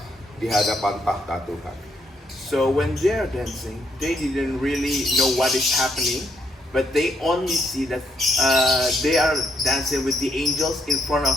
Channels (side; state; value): both; normal; correlation 0.75